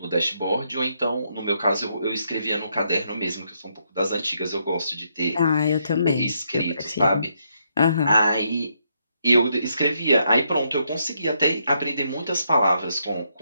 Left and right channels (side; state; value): both; inverted; correlation -0.77